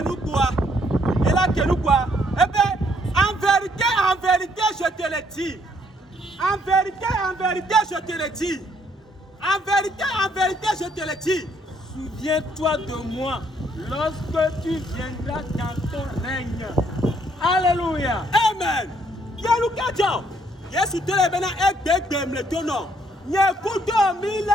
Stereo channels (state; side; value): normal; both; correlation 0.68